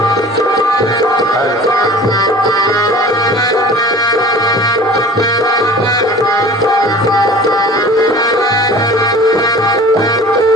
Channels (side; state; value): both; normal; correlation 0.43